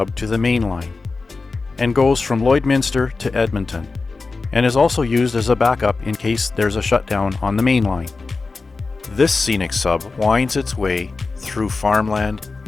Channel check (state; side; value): quieter; right; 4.0 dB